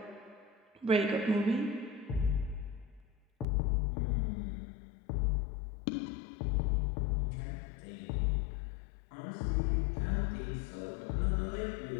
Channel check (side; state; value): right; drops out; at 3.5 s